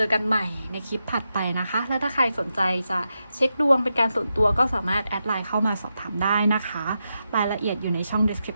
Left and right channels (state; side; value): inverted; both; correlation -0.87